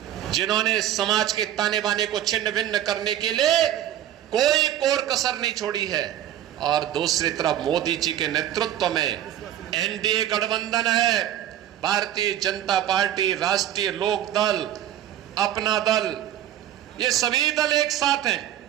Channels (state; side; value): quieter; left; 11.6 dB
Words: जिन्होंने समाज के ताने बाने को छिन्न भिन्न करने के लिए कोई कोर कसर नहीं छोड़ी है। और दूसरी तरफ मोदी जी के नेतृत्व में एनडीए गठबंधन है, भारतीय जनता पार्टी, राष्ट्रीय लोक दल, अपना दल, ये सभी दल एक साथ हैं।